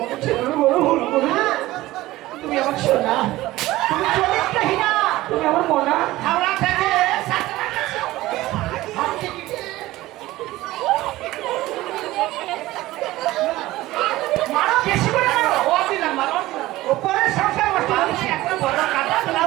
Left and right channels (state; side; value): quieter; left; 17.3 dB